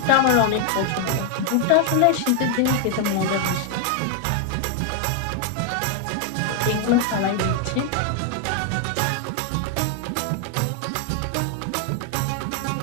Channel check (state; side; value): different; both; correlation 0.00